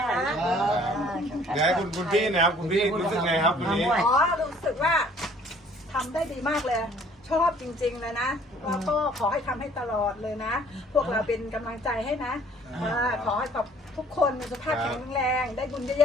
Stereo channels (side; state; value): both; normal; correlation 0.56